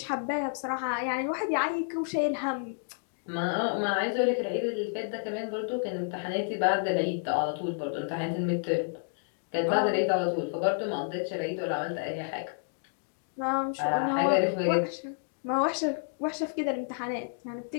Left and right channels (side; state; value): right; silent; digital silence